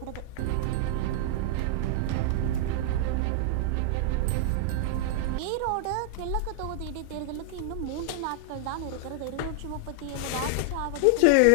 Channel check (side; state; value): both; different; correlation -0.01